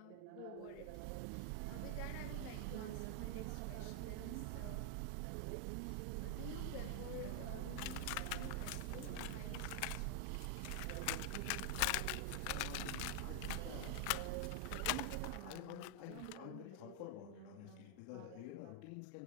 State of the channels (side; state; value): both; different; correlation 0.00